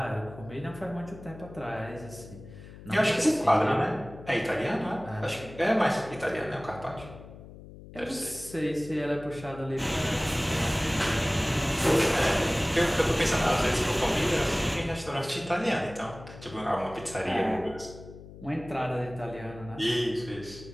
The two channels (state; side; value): noise; left; hum, 16 dB below the sound